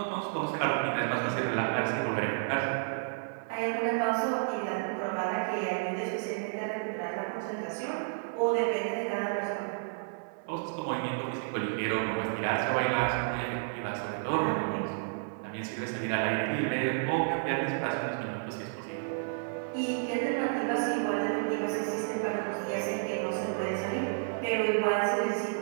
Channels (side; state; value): left; silent; 57 dB below the other